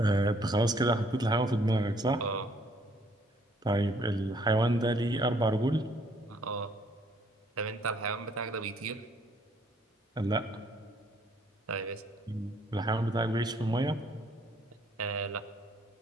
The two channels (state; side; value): normal; both; correlation 0.64